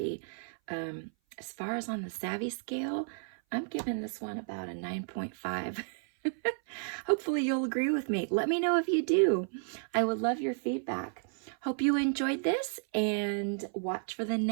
As far as on the savvy scale, I'm giving this one about a 9.5. Hopefully you'll agree with me. Let me know if you do. I would love your feedback. Hope you enjoyed this, and watch for the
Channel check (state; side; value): silent; left; 56 dB below the other